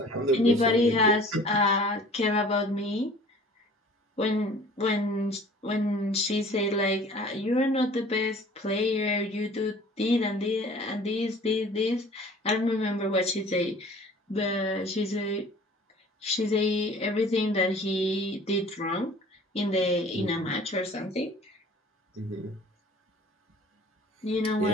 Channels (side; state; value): both; normal; correlation 0.48